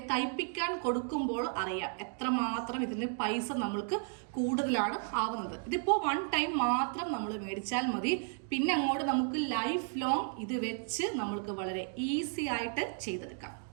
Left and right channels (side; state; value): left; silent; 55 dB below the other